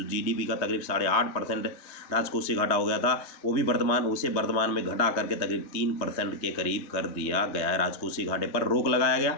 जीडीपी का तकरीब 8.5% राजकोषीय घाटा हो गया था, वो भी वर्तमान में घटा करके तकरीब 3% के करीब कर दिया गया है। राजकोषीय घाटे पर रोक लगाया गया।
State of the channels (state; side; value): late; right; 3.2 ms